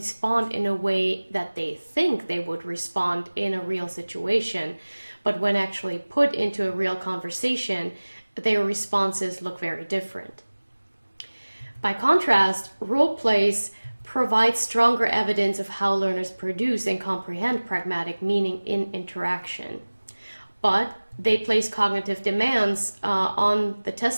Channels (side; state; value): both; inverted; correlation -1.00